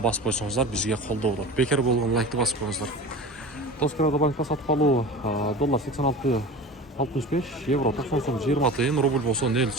басып койсоңуздар бизге колдоо болот. Бекер болгон лайкты басып коюңуздар. Тоскоодо банкта сатып алуу доллар 86.65, евро 90 сом 20 тыйын, рубль болсо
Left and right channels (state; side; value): normal; both; correlation 0.35